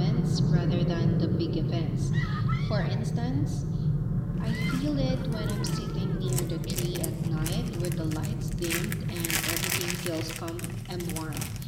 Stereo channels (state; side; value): identical; both; correlation 1.00